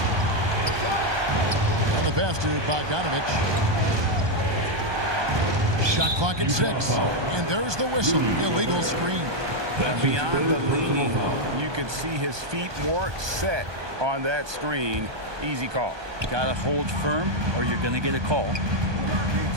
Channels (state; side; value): late; left; 1.2 ms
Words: And the pass to Bogdanovich. Shot clock at 6. And there's the whistle. Illegal screen. Beyond the leaning, you could see his feet weren't set on that screen. Easy call. Gotta hold firm or you're gonna get a call.